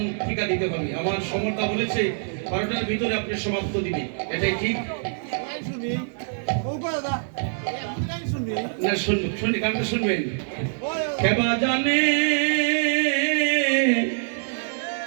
টিকা দিতে হবে। আমার সমর্থা বলেছে 12টার ভিতরে আপনি সমাপ্ত দিবে, এটাই ঠিক না? শুনি গানটা শুনবেন। খেবা জানে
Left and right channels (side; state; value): left; silent; digital silence